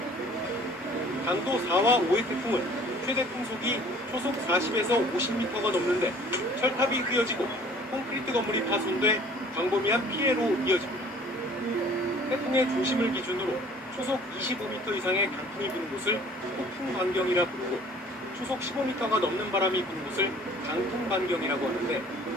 강도 4와 5의 태풍은 최대 풍속이 초속 40에서 50m가 넘는데 철탑이 휘어지고 콘크리트 건물이 파손돼 광범위한 피해로 이어집니다. 태풍의 중심을 기준으로 초속 25m 이상의 강풍이 부는 곳을 폭풍 반경이라 부르고 초속 15m가 넘는 바람이 부는 곳을 강풍 반경이라고 하는데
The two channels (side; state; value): both; normal; correlation 0.52